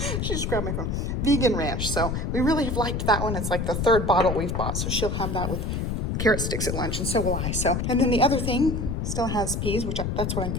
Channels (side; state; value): left; noise; rumble, 1 dB below the sound